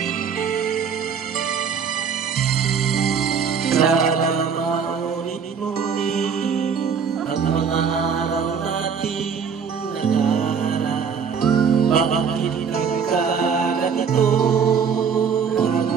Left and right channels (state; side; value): quieter; left; 6.6 dB